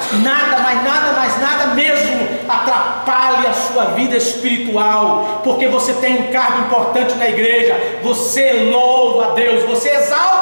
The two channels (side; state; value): both; inverted; correlation -1.00